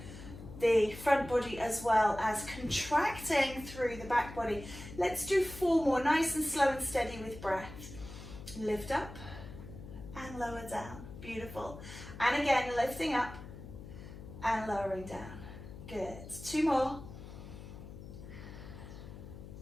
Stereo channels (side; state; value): left; noise; hum, 13 dB below the sound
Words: the front body as well as contracting through the back body. Let's do 4 more, nice and slow and steady with breath. Lift up and lower down. Beautiful. And again, lifting up and lowering down. Good. 2 more.